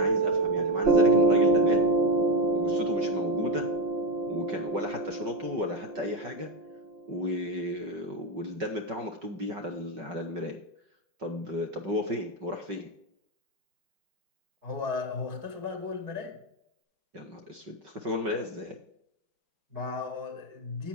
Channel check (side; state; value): left; late; 5.2 ms